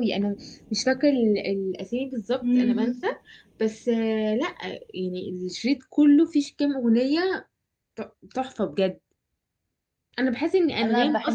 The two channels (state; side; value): identical; both; correlation 1.00